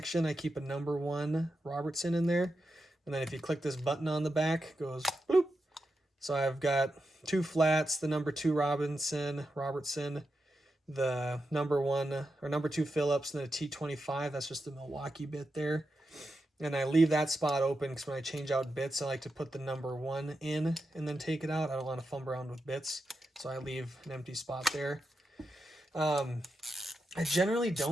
I keep a No. 1 Robertson in there. And then if you click this button on the back, it goes bloop. So I've got 2 flats, the No. 2 Robertson, the No. 1 or No. 2 Phillips, and then a T25. That's just the Milwaukee bit there. And I leave that spot open because when I change out bits, I like to put the No. 1 in and then take it out. I don't want to fumble around with bits, so I leave an empty spot there. I generally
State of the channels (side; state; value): both; normal; correlation 0.88